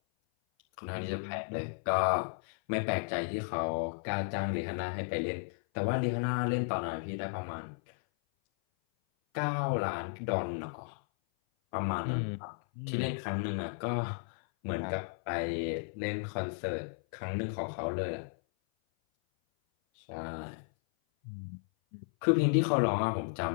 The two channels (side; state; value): right; silent; 55 dB below the other